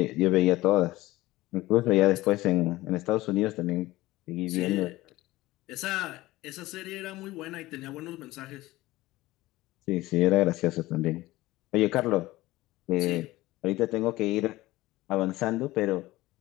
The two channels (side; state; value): right; quieter; 18.2 dB